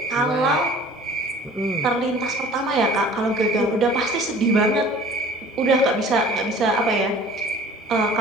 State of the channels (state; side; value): normal; both; correlation 0.47